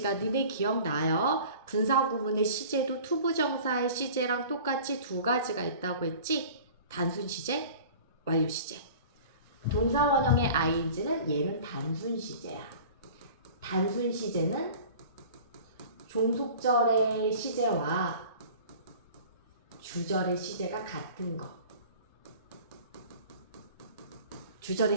니네 기억나요? 분사 구문의 시제도 투부정사의 시제랑 똑같이 두 가지가 있다고 했지? 단순 시제, 완료 시제. 동사 원형의 ing는 얘는 단순 시제야. 단순 시제는 종속절의 시제와 주절의 시제가 같은 거. 주절의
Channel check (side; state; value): both; inverted; correlation -0.43